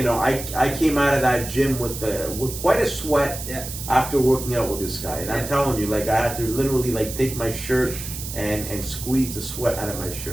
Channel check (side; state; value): right; noise; hiss, 9 dB below the sound